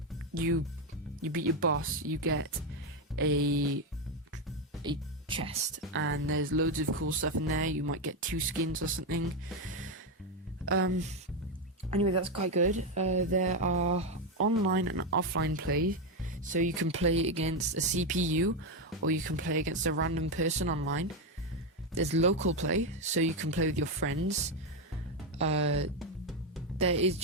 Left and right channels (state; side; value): normal; both; correlation 0.08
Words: you beat your boss, you get a chest, and there's loads of cool stuff in there. You might get 2 skins or something. Anyway, that's quite good. There are online and offline play, so you can play against a CPU or you can play against a random person online. There's local play, so you can play with your friends. There is